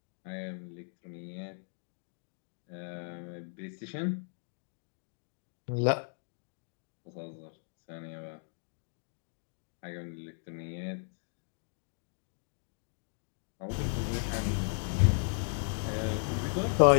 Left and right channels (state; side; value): silent; right; digital silence